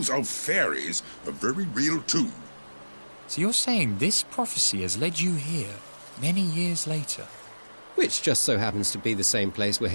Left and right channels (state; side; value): inverted; both; correlation -1.00